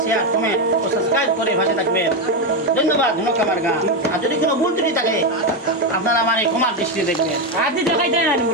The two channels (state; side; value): normal; both; correlation 0.08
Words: শেয়ার, কমেন্ট ও সাবস্ক্রাইব করে ভাষে থাকবেন। ধন্যবাদ। ধন্যবাদ আমার গান। আর যদি কোনো ভুল ত্রুটি থাকে আপনারা আমার এই ক্ষমার দৃষ্টি দেখবেন। আদি দেখাই দেয় না